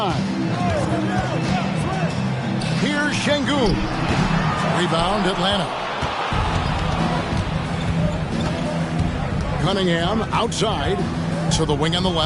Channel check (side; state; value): both; identical; correlation 1.00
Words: Here's Şengün. Rebound Atlanta. Cunningham outside to the wing on the